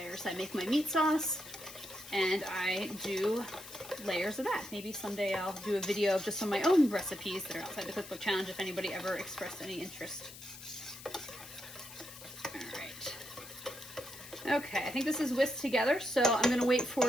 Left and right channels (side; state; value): left; noise; hiss, 15 dB below the sound